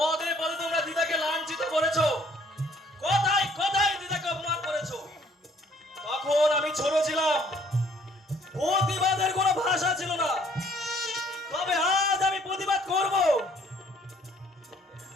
পদে তোমরা দিদাকে লাঞ্ছিত করেছো, কথায় কথায় দিদাকে অপমান করেছো। তখন আমি ছোট ছিলাম, প্রতিবাদের কোনো ভাষা ছিল না। তবে আজ আমি প্রতিবাদ করব।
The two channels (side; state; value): both; normal; correlation 0.61